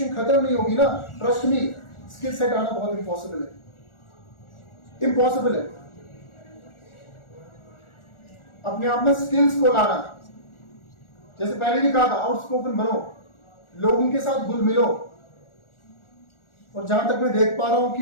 खत्म नहीं होगी ना, ट्रस्ट मी, स्किल सेट आना बहुत इंपॉसिबल है, इंपॉसिबल है। अपने आप में स्किल्स को लाना, जैसे पहले भी कहा था, आउटस्पोकन बनो, लोगों के साथ घुल मिलो। और जहां तक मैं देख पा रहा हूं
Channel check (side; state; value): right; late; 1.4 ms